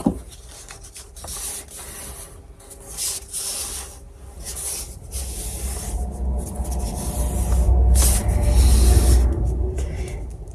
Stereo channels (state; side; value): identical; both; correlation 1.00